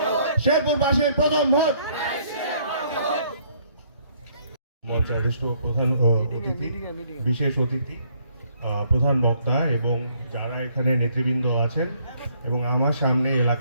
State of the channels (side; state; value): both; inverted; correlation -0.66